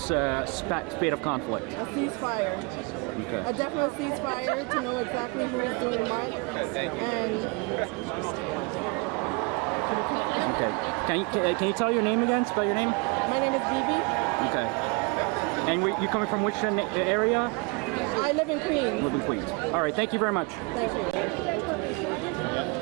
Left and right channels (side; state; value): left; quieter; 30.0 dB